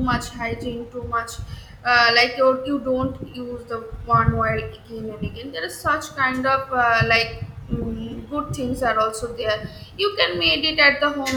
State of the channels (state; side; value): identical; both; correlation 1.00